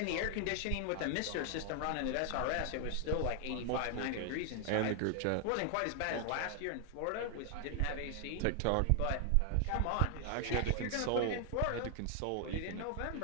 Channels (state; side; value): different; both; correlation 0.00